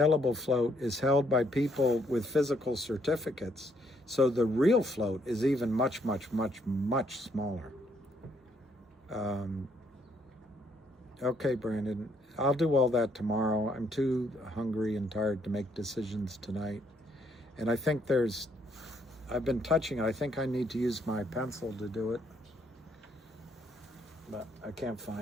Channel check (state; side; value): normal; both; correlation 0.70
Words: float is held by people with physical certificates. So the real float is even much, much, much, much smaller. Okay, Brandon, I'll do all that tomorrow. I'm too hungry and tired to make decisions tonight. And I think I've been touching it. I think I need to use my pencil to do it. But I can't